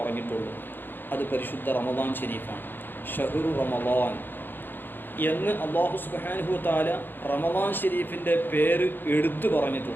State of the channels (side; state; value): right; late; 0.095 ms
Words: അത് പരിശുദ്ധ റമദാൻ ഷരീഫാണ്. ഷഹ്റു റമദാൻ എന്ന് അല്ലാഹു സുബ്ഹാനഹു വ തആല റമദാൻ ഷരീഫിൻ്റെ പേര് എടുത്തു